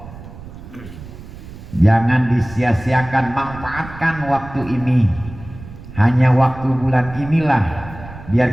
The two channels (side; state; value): right; noise; rumble, 15 dB below the sound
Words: jangan disia-siakan, manfaatkan waktu ini. Hanya waktu bulan inilah